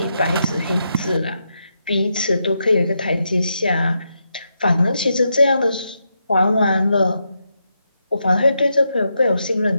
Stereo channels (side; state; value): both; inverted; correlation -0.83